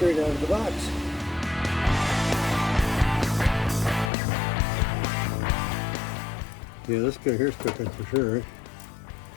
out of the box. Yeah, this guy here's cooking for sure, right?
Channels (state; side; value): drops out; right; at 4.1 s